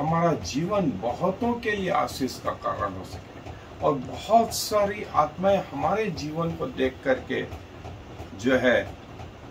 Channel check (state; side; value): identical; both; correlation 1.00